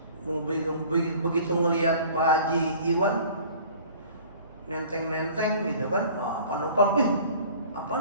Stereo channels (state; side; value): inverted; both; correlation -0.48